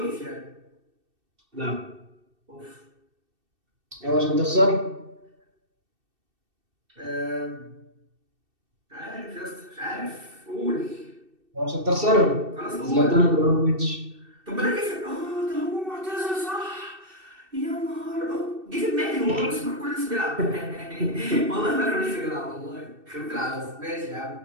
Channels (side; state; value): left; late; 2.7 ms